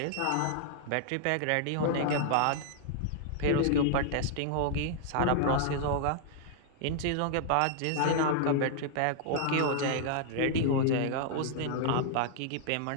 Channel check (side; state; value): both; different; correlation -0.01